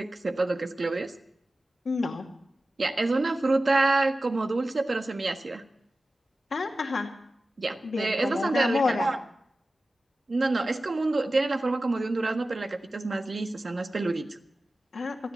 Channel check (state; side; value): normal; both; correlation 0.95